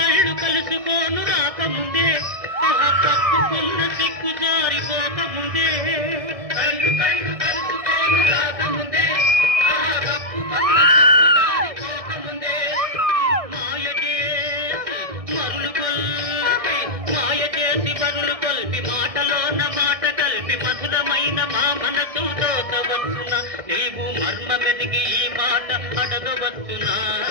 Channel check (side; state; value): left; late; 1.6 ms